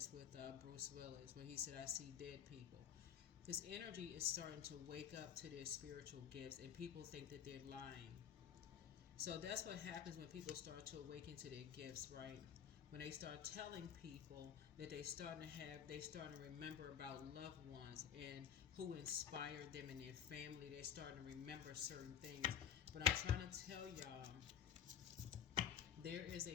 with Bruce Willis, where he said, "I see dead people." This energy is starting to wake up to their spiritual gifts, and people think that they're lying. So that's what happens when people start to awaken to their gifts, right? When they start telling people that they start to remember about loved ones and who inspired them in their family. They're starting to remember certain things. But I'm trying to tell y'all there is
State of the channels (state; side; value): quieter; right; 8.5 dB